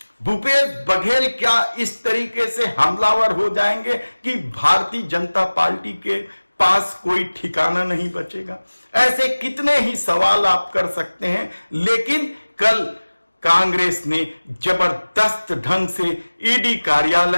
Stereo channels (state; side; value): inverted; both; correlation -1.00